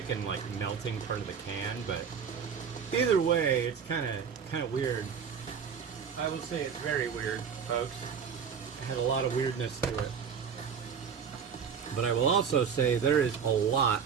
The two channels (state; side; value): quieter; left; 6.9 dB